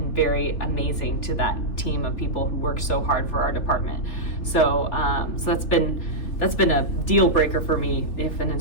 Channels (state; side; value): late; right; 3.4 ms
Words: very amazing to that team of people who work so hard for our department. So that's been a deal breaker for me if an